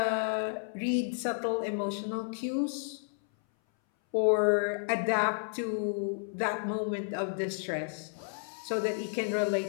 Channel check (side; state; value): right; silent; 57 dB below the other